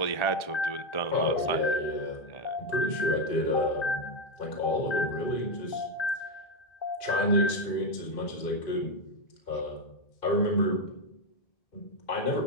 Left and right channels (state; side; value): late; right; 1.8 ms